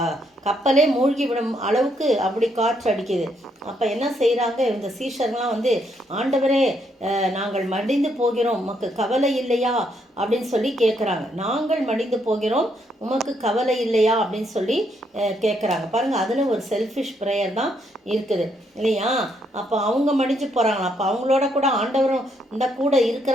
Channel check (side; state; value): both; normal; correlation 0.74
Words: கப்பலே மூழ்கி விடும் அளவுக்கு அப்படி காற்று அடிக்குது. அப்போ என்ன செய்கிறாங்க? இந்த சீஷர்லாம் ஆண்டவரே, நாங்கள் மடிந்து போகிறோம், உமக்கு கவலை இல்லையா அப்படின்னு சொல்லி கேட்குறாங்க. நாங்கள் மடிந்து போகிறோம், உமக்கு கவலை இல்லையா அப்படின்னு சொல்லி கேட்குறாங்க. பாருங்கள், அதில் ஒரு செல்ஃபிஷ் ப்ரேயர் தான் இருக்குது இல்லையா? அப்போ அவங்க மடிஞ்சு போகிறாங்களா? அப்போ அவங்களோட கூட ஆண்டவரும் இந்த கூட